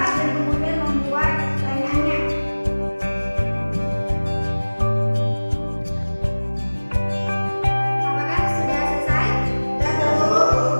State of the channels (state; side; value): inverted; both; correlation -1.00